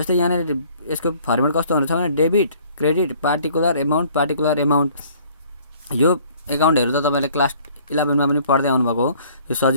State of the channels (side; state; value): both; inverted; correlation -0.56